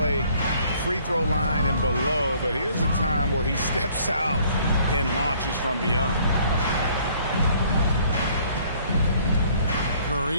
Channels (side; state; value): both; inverted; correlation -0.60